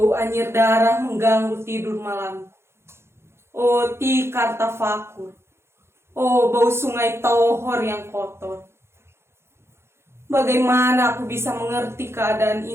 anyir darah mengganggu tidur malam. Oh tikar tafakur. Oh bau sungai Tohor yang kotor. Bagaimana aku bisa mengerti keadaan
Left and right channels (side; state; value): left; late; 0.12 ms